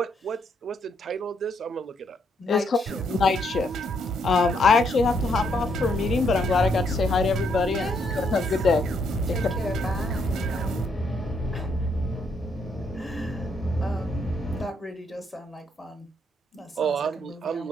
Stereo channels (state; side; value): normal; both; correlation 0.74